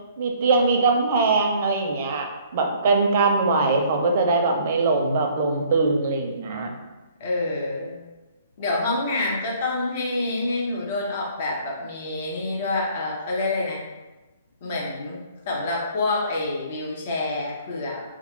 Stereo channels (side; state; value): both; inverted; correlation -0.58